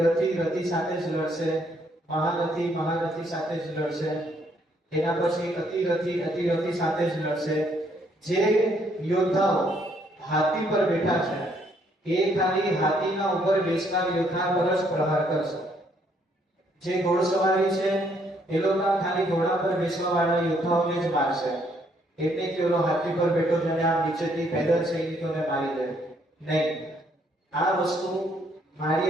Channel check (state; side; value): normal; both; correlation 0.69